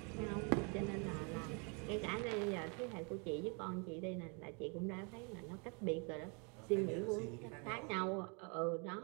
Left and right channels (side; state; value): left; quieter; 34.4 dB